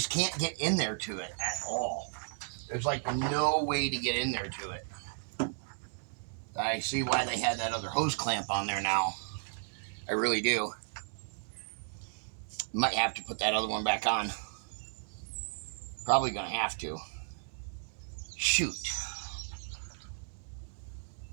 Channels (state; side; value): silent; left; digital silence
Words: can't get in there to it at all. There's like no way to get in there to it. I see why they had that other hose clamp on there now. I really do. Might have to put that other one back on. Probably gonna have to. Shoot.